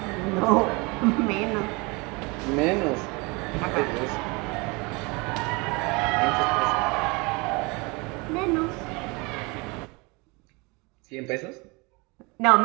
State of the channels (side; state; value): left; quieter; 27.4 dB